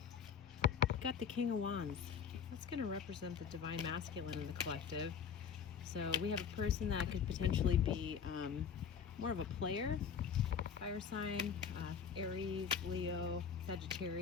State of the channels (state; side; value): quieter; right; 7.1 dB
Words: We've got the King of Wands. That's going to represent the Divine Masculine in the collective. So we have a person that could potentially be more of a player, fire sign, Aries, Leo,